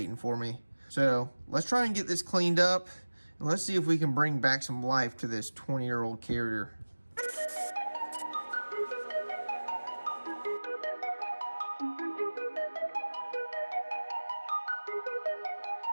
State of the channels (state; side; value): inverted; both; correlation -1.00